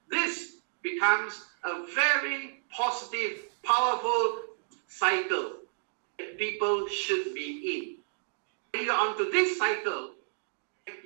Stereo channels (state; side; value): silent; left; digital silence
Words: this becomes a very positive, powerful cycle that people should be in. When you're onto this cycle,